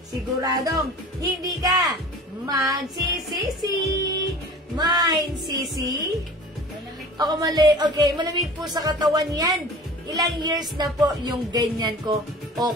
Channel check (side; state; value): both; normal; correlation 0.41